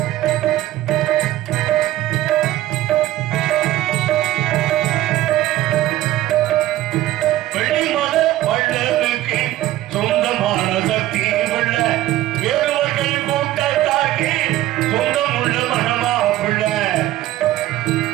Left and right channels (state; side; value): quieter; left; 14.8 dB